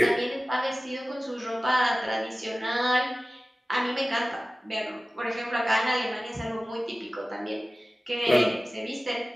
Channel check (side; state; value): both; normal; correlation 0.97